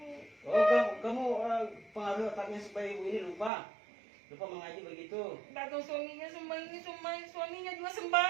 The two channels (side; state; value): left; drops out; at 3.5 s